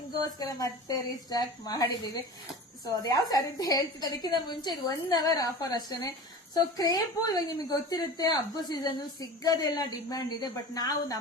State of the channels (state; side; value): normal; both; correlation 0.35